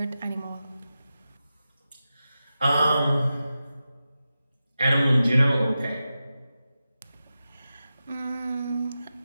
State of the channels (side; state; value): both; inverted; correlation -0.92